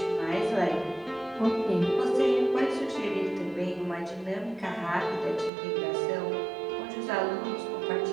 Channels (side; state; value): left; drops out; at 5.5 s